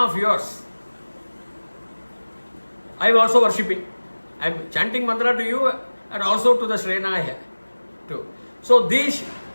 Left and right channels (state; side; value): inverted; both; correlation -1.00